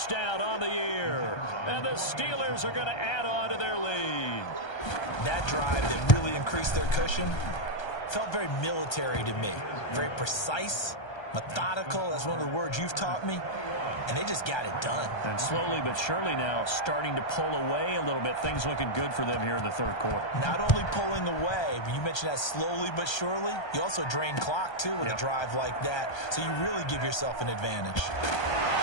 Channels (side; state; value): right; late; 1.3 ms